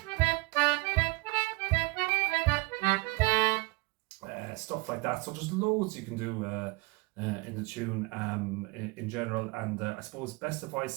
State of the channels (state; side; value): quieter; left; 24.3 dB